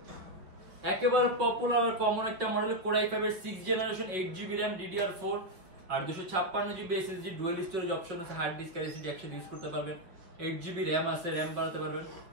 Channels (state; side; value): late; left; 5.2 ms